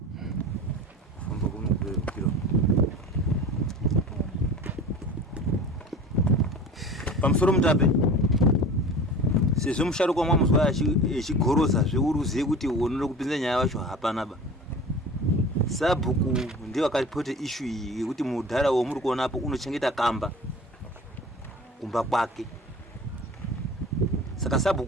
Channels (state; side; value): normal; both; correlation 0.38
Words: Famba kuno kilo. Pamusoro mutape. Sezvo musharuka mwamuzwa echigoroza zveuruziye kuti unoda kupinza nyaya yacho hapana ba. Sabhuku ndiye akaripote issue iyi yekuti mudhara womuri kuona apo unochengeta kamba kumba kwake. Saka